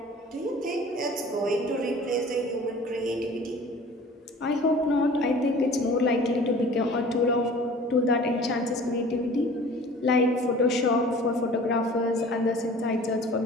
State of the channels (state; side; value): normal; both; correlation 0.45